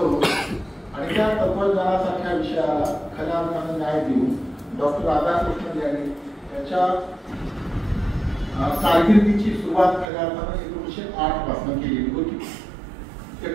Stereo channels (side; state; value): left; drops out; at 10.1 s